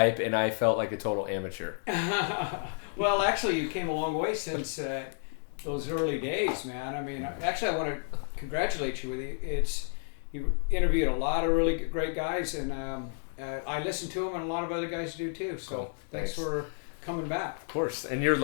and I felt like a total amateur. Well, actually, you came a long way since those early days, man. I mean, actually, I want to congratulate you with it. You interviewed a lot of really great guys, and I listened to them, and a lot of other guys do too. So Cool. Thanks for coming back. Of course, and you're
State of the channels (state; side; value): silent; right; 57 dB below the other